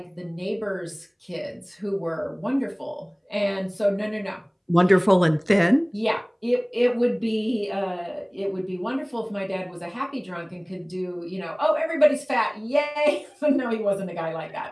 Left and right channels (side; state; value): both; identical; correlation 1.00